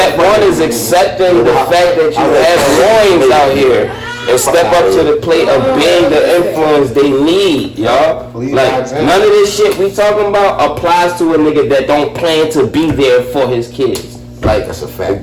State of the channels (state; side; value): identical; both; correlation 1.00